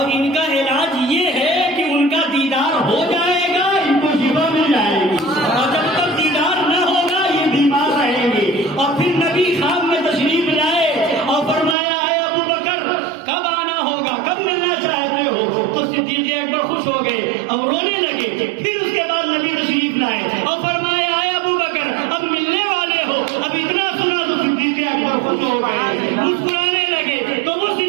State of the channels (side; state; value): left; drops out; at 11.8 s